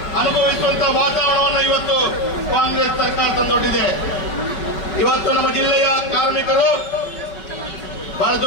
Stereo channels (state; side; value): late; right; 5.5 ms